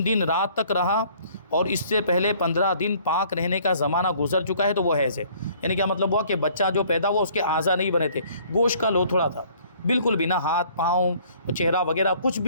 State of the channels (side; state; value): both; inverted; correlation -0.57